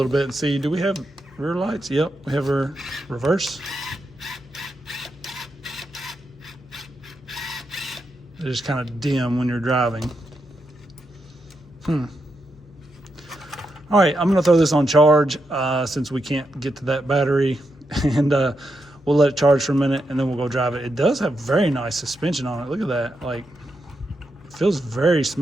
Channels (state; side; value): normal; both; correlation 0.84